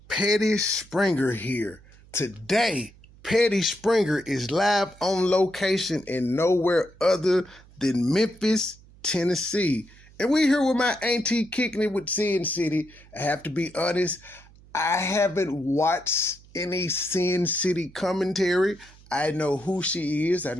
Petty Springer here. Today, Petty Springer is live on location in nowhere other than Memphis, Tennessee. And we here with my auntie kicking it with Sin City. I have to be honest, I haven't watched any Sin City commentary. I know who she is. I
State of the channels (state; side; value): noise; right; hum, 24 dB below the sound